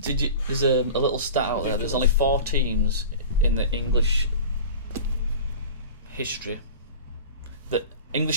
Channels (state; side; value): inverted; both; correlation -0.36